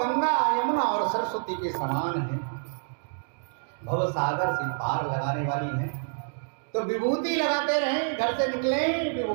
यमुना और सरस्वती के समान है, भव सागर से पार लगाने वाली है। तो विभूति लगाते रहें, घर से निकले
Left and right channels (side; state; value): left; silent; digital silence